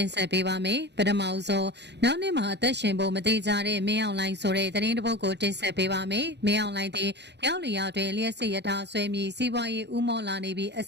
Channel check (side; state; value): left; late; 0.50 ms